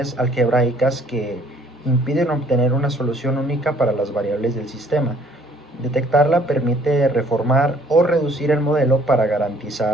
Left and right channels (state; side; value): normal; both; correlation 0.60